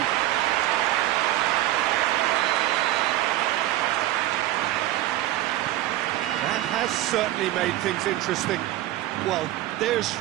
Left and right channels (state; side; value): quieter; left; 14.9 dB